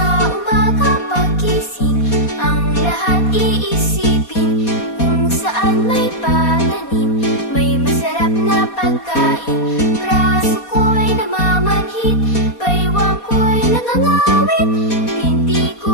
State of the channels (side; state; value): right; late; 4.2 ms